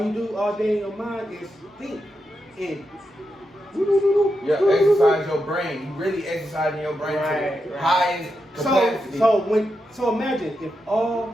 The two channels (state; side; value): normal; both; correlation 0.86